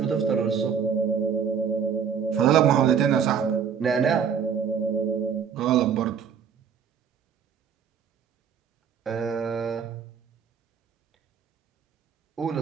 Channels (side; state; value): left; quieter; 7.3 dB